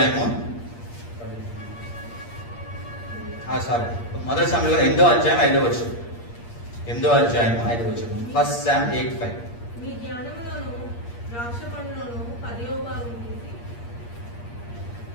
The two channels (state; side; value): late; right; 8.5 ms